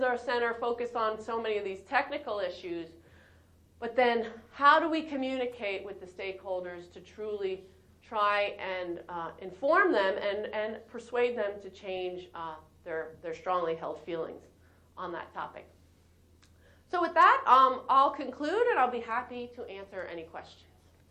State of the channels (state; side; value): identical; both; correlation 1.00